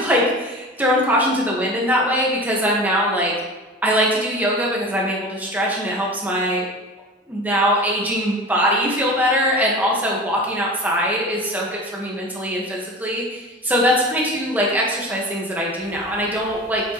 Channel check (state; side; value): normal; both; correlation 0.34